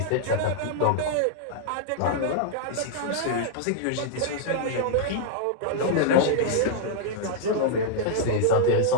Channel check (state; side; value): different; both; correlation -0.01